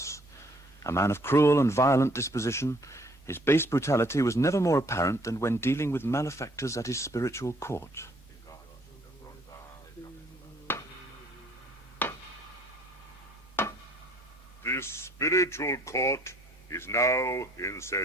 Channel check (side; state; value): both; normal; correlation 0.62